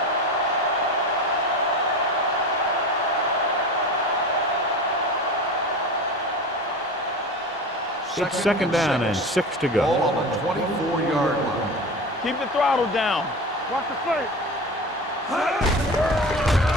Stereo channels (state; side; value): normal; both; correlation 0.30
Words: It's 2nd down and 6 to Ball go. on the 24-yard line. Keep the throttle down. Watch the plate.